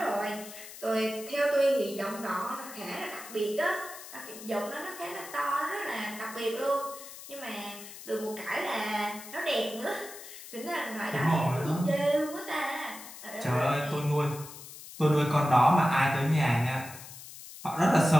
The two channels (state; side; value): noise; left; hiss, 14 dB below the sound